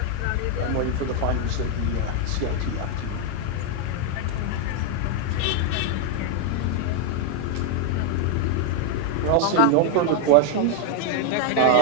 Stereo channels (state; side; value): different; both; correlation 0.01